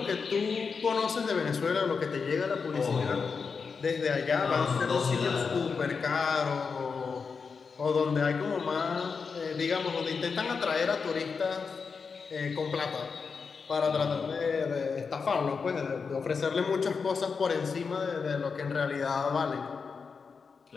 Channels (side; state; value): right; quieter; 5.3 dB